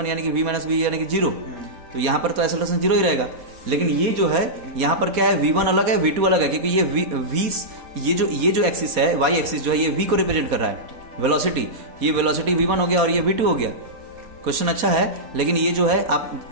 यानी कि v माइनस v यानी कि जीरो। तो यहाँ पर तो एक्सेलरेशन जीरो ही रहेगा। लेकिन ये जो है यहाँ पर क्या है, v1 अलग है, v2 अलग है, क्योंकि ये जो एक्सिस है, y एक्सिस जो है, ये v को रिप्रेजेंट कर रहा है, वेलोसिटी। ये वेलोसिटी v1 हो गया और ये v2 हो गया। क्वेश्चन अच्छा है, लेकिन ये जो है आप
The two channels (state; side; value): late; left; 4.2 ms